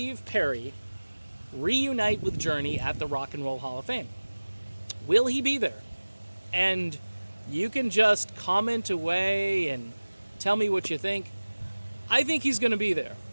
Perry reunite with Journey at the Rock and Roll Hall of Fame? Will he be there? And you can just comment away and tell me what you think. I think he's going to be there.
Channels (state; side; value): inverted; both; correlation -1.00